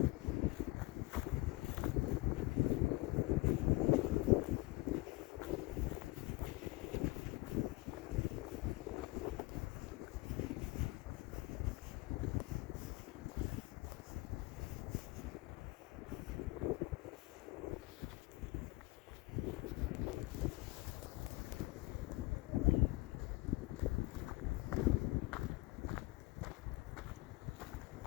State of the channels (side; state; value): right; quieter; 21.8 dB